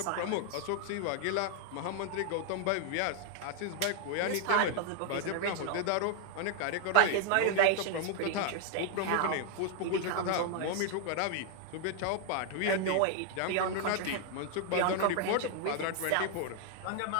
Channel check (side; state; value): both; different; correlation 0.00